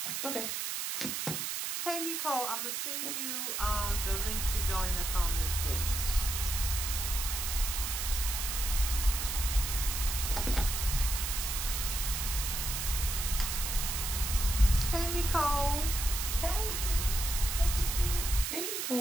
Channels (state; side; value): noise; right; hiss, 2 dB below the sound